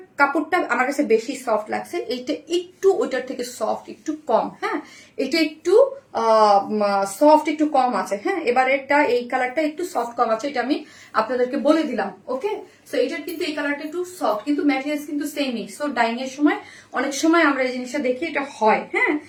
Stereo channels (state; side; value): identical; both; correlation 1.00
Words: কাপড়টা আমার কাছে বেশি সফট লাগছে, এইটা একটু ওইটার থেকে সফট একটু কম। হ্যাঁ, এটা একটু সফট একটু কম আছে। হ্যাঁ, এবারেরটা এই কালারটা একটু সফট কম আছে, এটা আমি আপনাদেরকে বলে দিলাম। ওকে, সো এটার কিন্তু এই কালারটা একটু সফট, কিন্তু ম্যাটেরিয়ালস কিন্তু সেমই। সো ডাইং এর সময় অনেক সময় আমরা এই জিনিসটা দেখি, এটা হয়। হ্যাঁ,